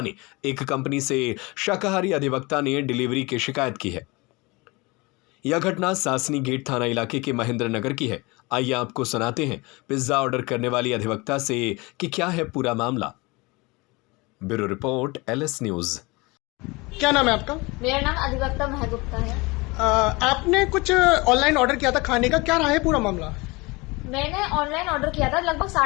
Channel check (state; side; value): quieter; right; 24.9 dB